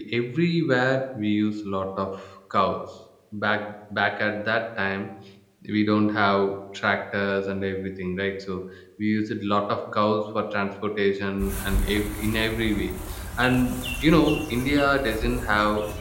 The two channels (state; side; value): identical; both; correlation 1.00